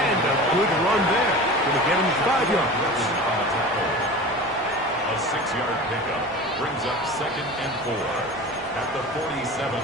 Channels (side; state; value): right; noise; hum, 26 dB below the sound